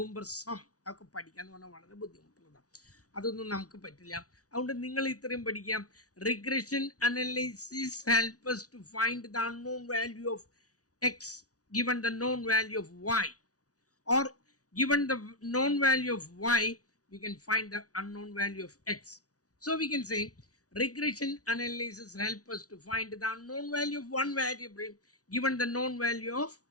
ഒക്കെ പഠിക്കുക എന്ന് പറഞ്ഞാൽ വളരെ ബുദ്ധിമുട്ടുള്ളതാണ്. അതൊന്നും നമുക്ക് പറ്റില്ല. അതുകൊണ്ട് നിങ്ങൾ ഇത്രയും പഠിക്കാം. Regression analysis help us to find the unknown value of x given the known value of y, or given the known value of y we can find the unknown value of x. So we can say regression analysis help us to find the unknown value of one variable given the known value of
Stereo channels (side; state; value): right; late; 0.67 ms